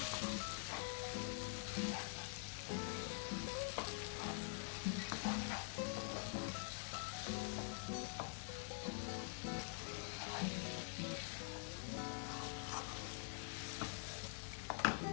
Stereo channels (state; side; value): silent; right; digital silence